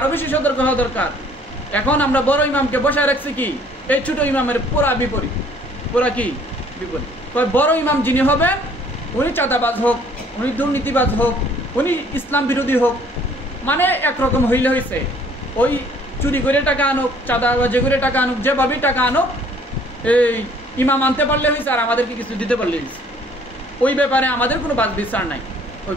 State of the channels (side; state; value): both; normal; correlation 0.58